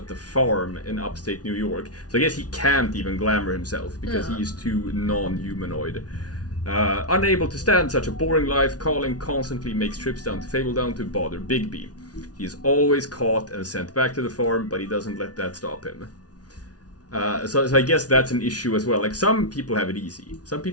the farm in upstate New York. So I guess he can't even glamour himself because he is too non-humanoid. Unable to stand such a boring life, Colin constantly makes trips down to Fabledown to bother Bigby. He is always caught and sent back to the farm, but he doesn't let that stop him. So I guess that's an issue as well. Like, some people have it easy. Some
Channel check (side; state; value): right; late; 0.69 ms